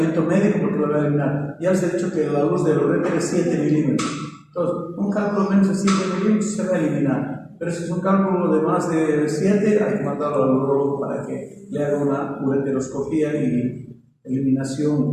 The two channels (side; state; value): both; identical; correlation 1.00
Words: médico porque lo va a eliminar. Ya les he dicho que la luz del uréter es 7 milímetros. Entonces, un cálculo menos de 7 milímetros se va a eliminar. Pero si es un cálculo de más de 7, hay que mandarlo al urólogo para que le haga una ureteroscopía y